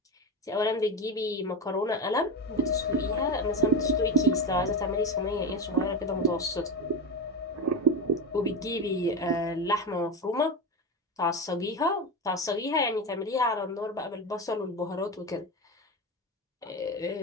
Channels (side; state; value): both; normal; correlation 0.18